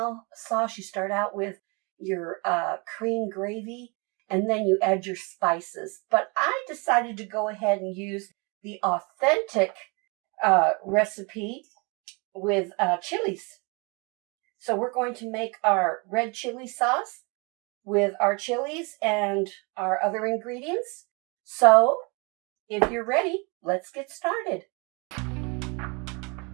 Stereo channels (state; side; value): quieter; left; 30.7 dB